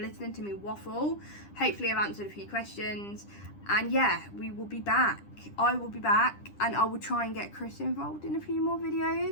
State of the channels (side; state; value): right; late; 10 ms